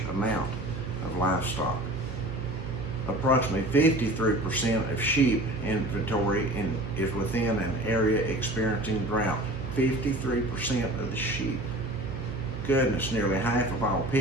amount of livestock. Approximately 53% of sheep inventory is within an area experiencing drought. 53% of the sheep. goodness, nearly half of all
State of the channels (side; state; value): right; noise; hum, 11 dB below the sound